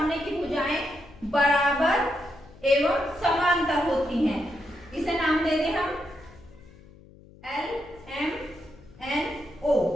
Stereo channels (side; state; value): left; noise; hum, 23 dB below the sound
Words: की भुजाएं बराबर एवं समांतर होती हैं। इसे नाम दे दें हम LMNO।